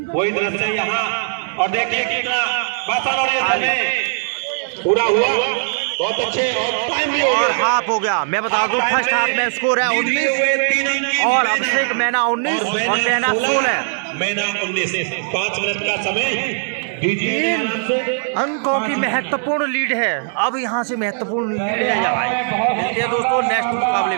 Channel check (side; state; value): left; silent; 63 dB below the other